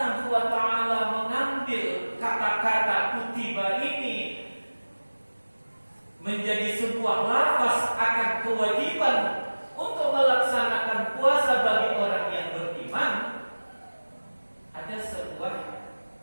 wa ta'ala mengambil kata-kata kutiba ini menjadi sebuah lafaz akan kewajiban untuk melaksanakan puasa bagi orang yang beriman? Ada sebuah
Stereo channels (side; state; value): both; inverted; correlation -1.00